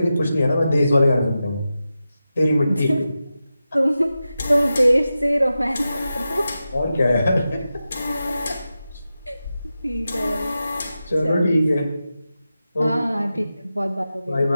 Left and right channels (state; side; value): inverted; both; correlation -0.92